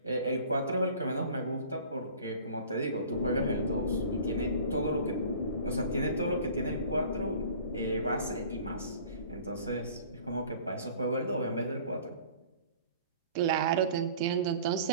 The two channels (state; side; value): inverted; both; correlation -0.46